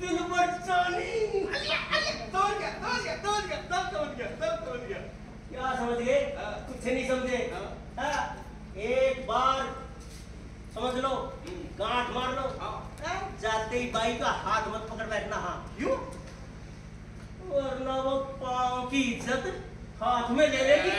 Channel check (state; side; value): identical; both; correlation 1.00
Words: बचानी। तोड़ गया। क्या समझ गए? कुछ नहीं समझे? एक बार समझ लो, गांठ मार लो, जाते ही बाई का हाथ मत पकड़ बैठना। हाँ क्यों? वरना वो पाँव की इज्जत हाथ में ले लेगी।